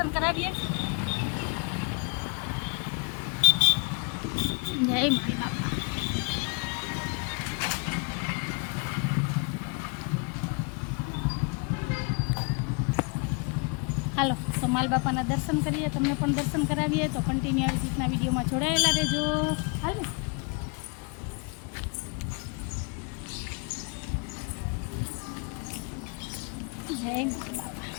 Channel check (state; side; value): quieter; right; 34.5 dB